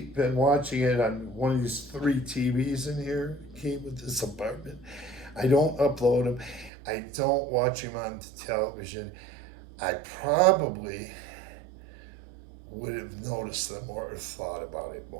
watching it on one of these 3 TVs in here, came with this apartment, I don't upload them. I don't watch them on television. I probably would have noticed them more or thought about it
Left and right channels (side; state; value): left; drops out; at 6.7 s